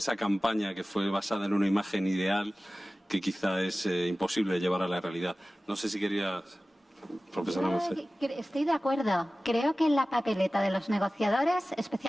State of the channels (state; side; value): normal; both; correlation 0.96